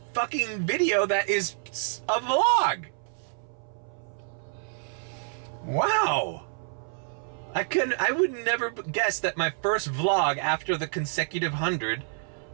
fucking video that is a vlog. Wow. I would never guess that my first vlog after the consecutive 100,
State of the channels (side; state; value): left; silent; 59 dB below the other